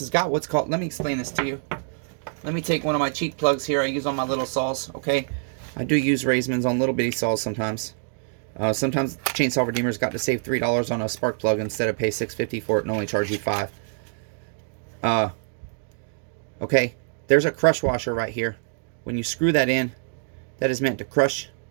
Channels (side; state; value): left; silent; digital silence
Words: has got what's called, let me explain this to you. Let me take one of my cheap plugs here I use on my little saws, okay? I do use Raismans on little bitty saws sometimes. Sometimes Chainsaw Redeemer's got to save $3 on a spark plug instead of pay $6.50 for it and only charge you $5. Okay, there's a crush washer right here. When you screw that in, that is meant to crush.